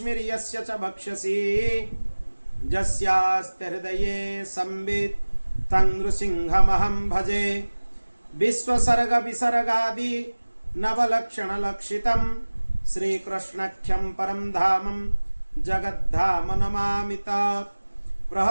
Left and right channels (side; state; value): both; inverted; correlation -1.00